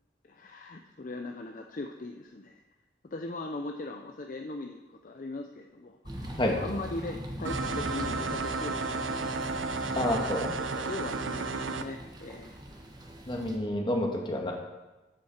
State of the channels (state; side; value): normal; both; correlation 0.39